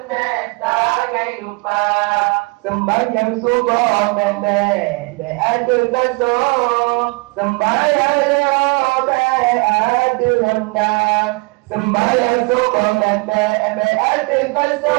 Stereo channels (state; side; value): quieter; left; 28.6 dB